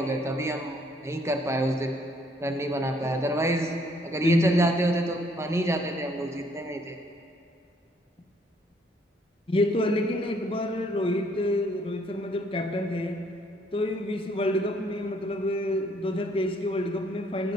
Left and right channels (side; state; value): both; normal; correlation 0.66